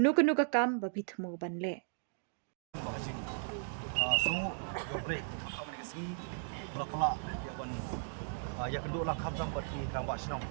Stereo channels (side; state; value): left; silent; digital silence